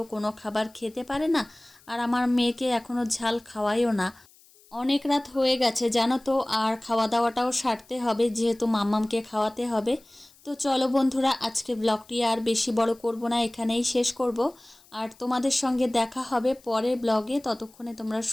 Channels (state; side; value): noise; left; hiss, 28 dB below the sound